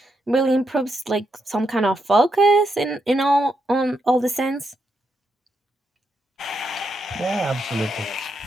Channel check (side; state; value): both; normal; correlation 0.81